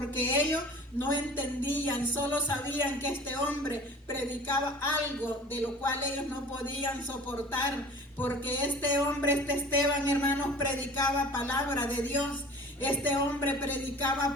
ellos no entendían, solo sabían que este hombre predicaba algo de lo cual ellos no podían soportar, porque este hombre, este Esteban, hermanos, predicaba palabra de Dios. Este hombre predicaba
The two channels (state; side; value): normal; both; correlation 0.43